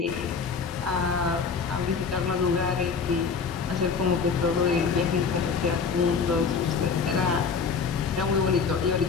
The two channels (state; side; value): quieter; right; 5.5 dB